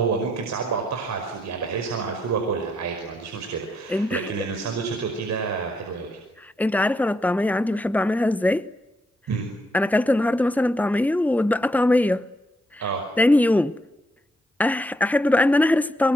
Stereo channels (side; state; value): both; normal; correlation 0.77